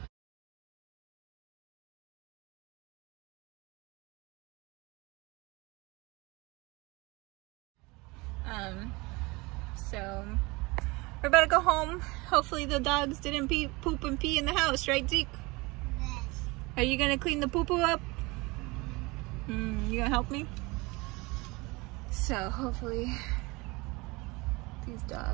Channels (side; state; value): left; quieter; 24.7 dB